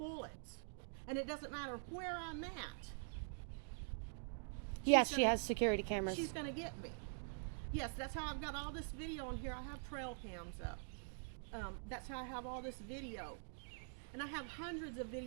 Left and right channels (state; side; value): silent; left; digital silence